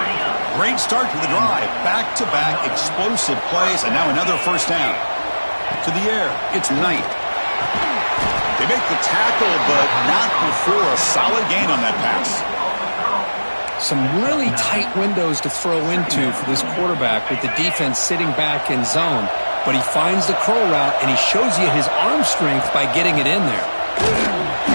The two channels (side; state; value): both; inverted; correlation -1.00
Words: Great start to the drive. Back-to-back explosive plays, and now another first down. To the air, it's Knight. They make the tackle, but not before a solid gain on that pass. Some really tight windows to throw into for this quarterback with the defense sitting back in zone. But he finds the curl route, and he shows you his arm strength by getting it in there.